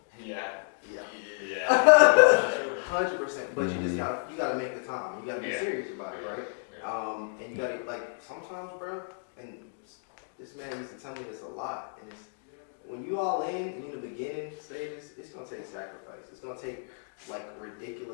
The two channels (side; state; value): right; silent; digital silence